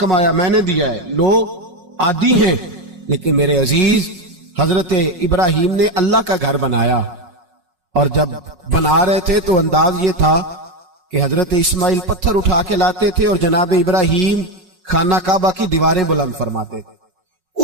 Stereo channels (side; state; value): left; late; 5.4 ms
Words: میں نے دیا ہے۔ لوگ عادی ہیں، لیکن میرے عزیز حضرت ابراہیم نے اللہ کا گھر بنایا، اور جب بنا رہے تھے تو انداز یہ تھا کہ حضرت اسماعیل پتھر اٹھا کے لاتے تھے اور جناب ابراہیم خانہ کعبہ کی دیواریں بلند فرماتے تھے۔